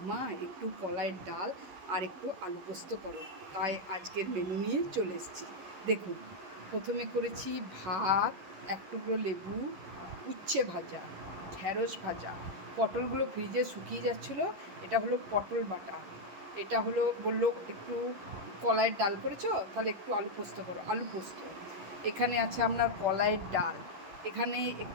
মা একটু কলাইয়ের ডাল আর একটু আলু পোস্ত করো। তাই আজকের মেনু নিয়ে চলে এসেছি। দেখুন, প্রথমে করেছি ভাত, এক টুকরো লেবু, উচ্ছে ভাজা, ঢ্যাঁড়স ভাজা, পটলগুলো ফ্রিজে শুকিয়ে যাচ্ছিলো। এটা হলো পটল বাটা। এটা হলো বললো একটু কলাইয়ের ডাল করেছো, তাহলে একটু আলু পোস্ত করো, আলু পোস্ত। এখানে আছে আপনার কলাইয়ের ডাল। এখানে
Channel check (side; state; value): left; late; 11 ms